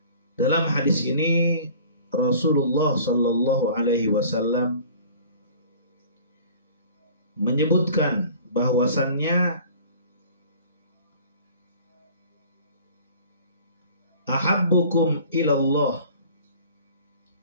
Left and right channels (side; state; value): both; inverted; correlation -0.47